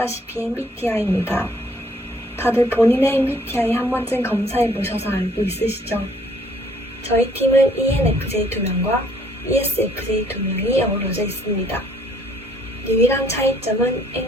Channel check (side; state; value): both; normal; correlation 0.62